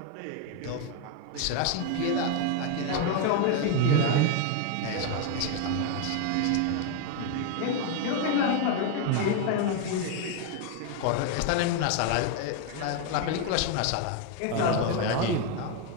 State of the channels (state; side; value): different; both; correlation 0.01